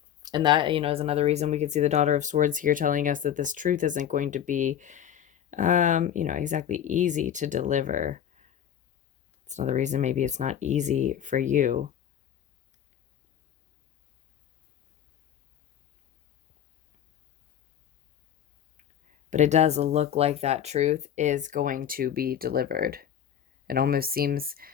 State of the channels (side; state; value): right; quieter; 9.7 dB